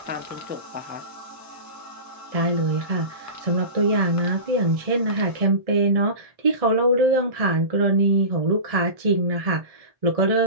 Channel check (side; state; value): left; late; 1.7 ms